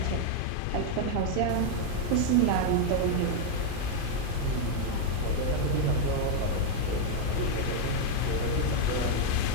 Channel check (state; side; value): different; both; correlation 0.00